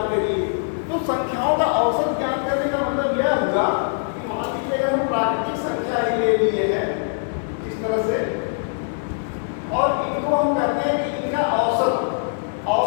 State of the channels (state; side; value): silent; right; digital silence